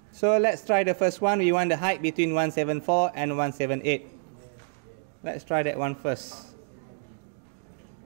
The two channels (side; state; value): left; silent; digital silence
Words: So let's try the first one. We want the height between 174 and 178. Let's try that one first.